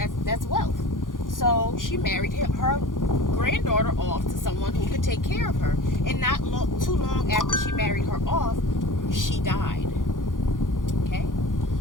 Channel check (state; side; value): late; right; 0.89 ms